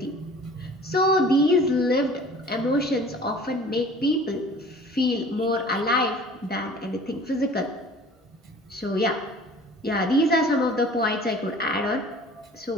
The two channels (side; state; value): both; normal; correlation 0.47